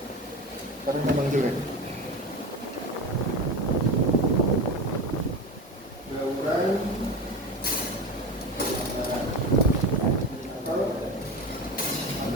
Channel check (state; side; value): normal; both; correlation 0.26